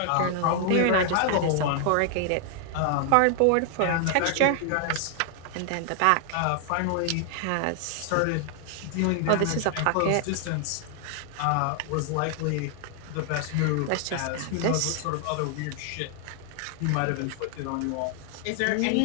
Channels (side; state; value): both; different; correlation 0.00